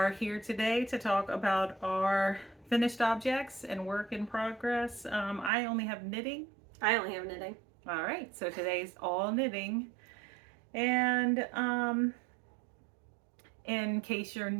here today to talk about our finished objects and work in progress. I only have knitting. I only have knitting. All right, so today's all knitting. And in case you're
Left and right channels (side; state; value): left; drops out; at 5.5 s